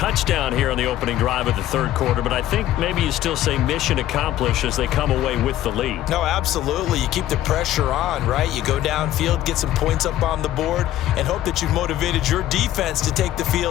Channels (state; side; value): quieter; right; 13.3 dB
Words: here on the opening drive of the third quarter, but I think maybe you still say mission accomplished as they come away with the lead. No, absolutely. You keep the pressure on, right? You go downfield, get some points up on the board, and hope that you've motivated your defense to take the